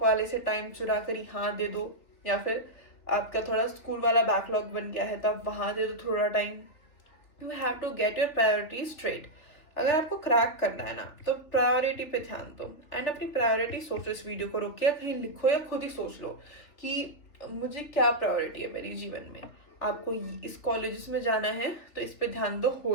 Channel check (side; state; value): right; late; 3.4 ms